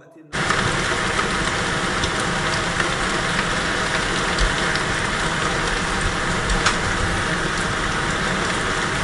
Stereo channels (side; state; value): both; identical; correlation 1.00